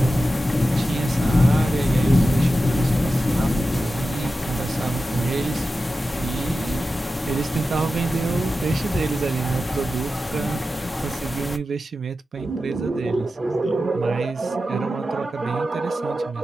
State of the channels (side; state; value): both; normal; correlation 0.92